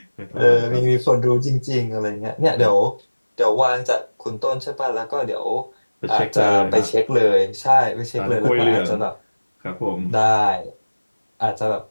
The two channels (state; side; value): inverted; both; correlation -1.00